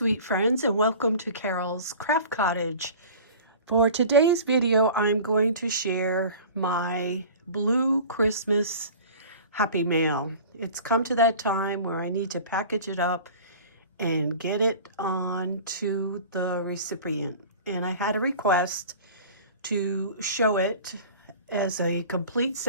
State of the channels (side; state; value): both; inverted; correlation -0.41